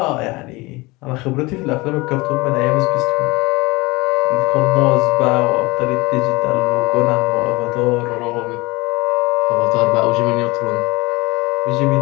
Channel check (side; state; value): right; quieter; 23.0 dB